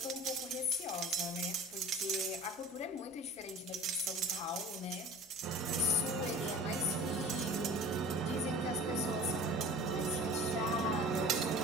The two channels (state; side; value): normal; both; correlation 0.40